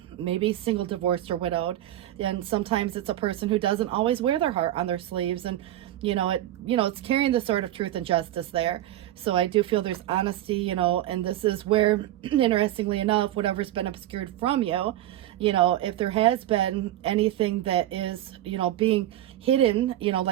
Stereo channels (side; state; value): left; quieter; 13.6 dB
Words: maybe single, divorced, or widowed. And sometimes it's a person who doesn't always wear their heart on their sleeves. And, it's carrying the sword of truth and justice there. So I do feel there's honesty, and this is where, interestingly enough, whatever's been obscured from you, if there has been anything that is, being hidden,